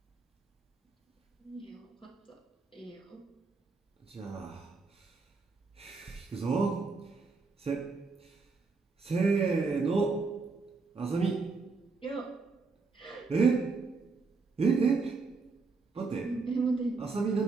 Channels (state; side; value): quieter; left; 4.3 dB